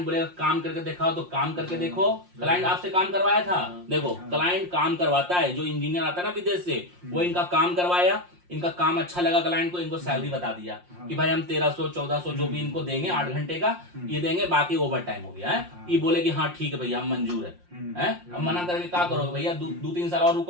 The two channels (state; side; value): late; left; 5.6 ms